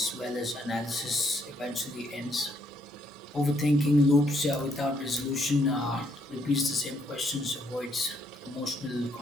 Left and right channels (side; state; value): both; normal; correlation 0.72